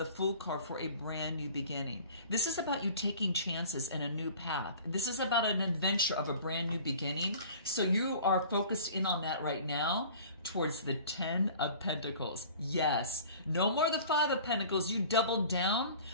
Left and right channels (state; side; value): inverted; both; correlation -0.45